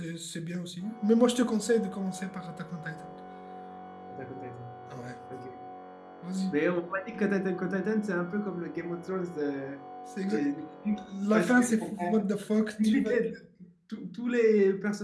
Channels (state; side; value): identical; both; correlation 1.00